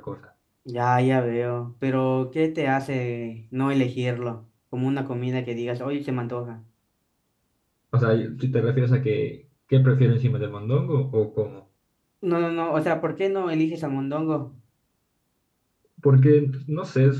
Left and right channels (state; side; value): identical; both; correlation 1.00